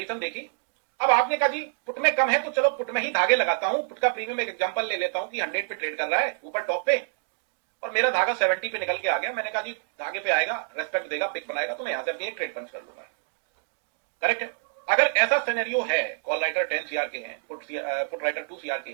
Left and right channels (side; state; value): left; silent; digital silence